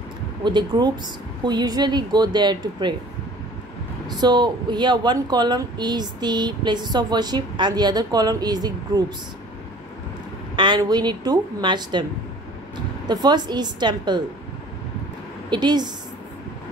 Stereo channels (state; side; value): normal; both; correlation 0.48